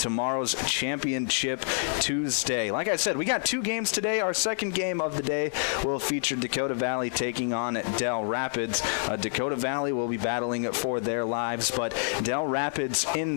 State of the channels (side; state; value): right; silent; 60 dB below the other